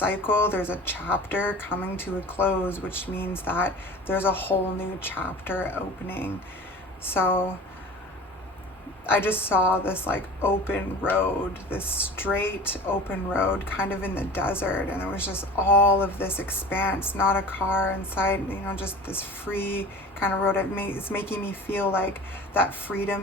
there's a chapter coming to a close, which means that there's a whole new chapter opening. So I just saw this like open road, this straight open road kind of in the desert, and there was just all of this expanse, not a car inside, just this free kind of road. It's making me feel like that freedom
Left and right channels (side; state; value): both; normal; correlation 0.39